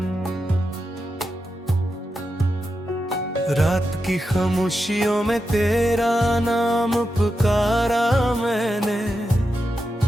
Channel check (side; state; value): both; normal; correlation 0.88